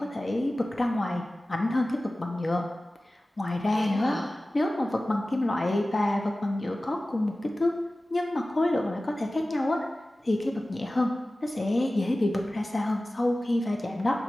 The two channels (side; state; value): both; normal; correlation 0.96